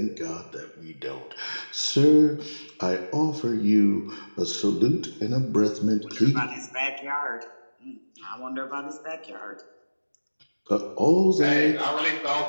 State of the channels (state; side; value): inverted; both; correlation -1.00